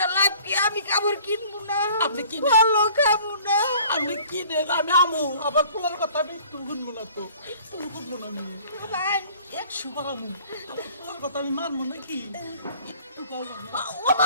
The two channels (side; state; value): both; inverted; correlation -0.51